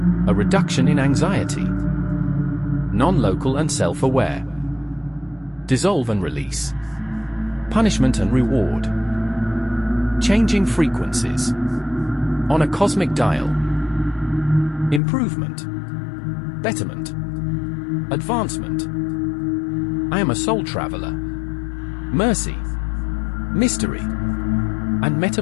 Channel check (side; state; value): right; drops out; at 15.0 s